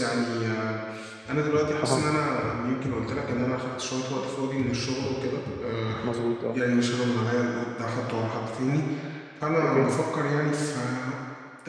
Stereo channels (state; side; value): identical; both; correlation 1.00